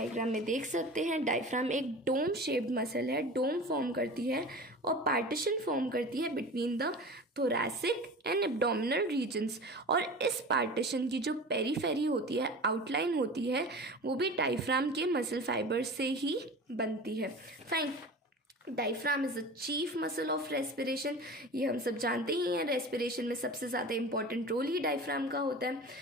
में देख सकते हैं डायफ्राम एक डोम शेप्ड मसल है, डोम फॉर्म करती है और पार्टीशन फॉर्म करती है between the thoracic and abdominal regions. और इस पार्टीशन की जो पेरीफेरी होती है, आउटलाइन होती है, वो भी डायफ्राम के मसल फाइबर से ही बनती है। Fine. Diaphragm is a chief muscle of respiration. ये हम सब जानते ही हैं, रेस्पिरेशन में सबसे ज़्यादा इंपॉर्टेंट रोल ही डायफ्राम का होता है।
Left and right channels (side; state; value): both; normal; correlation 0.35